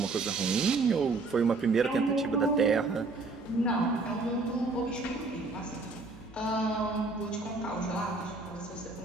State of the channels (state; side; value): quieter; left; 3.6 dB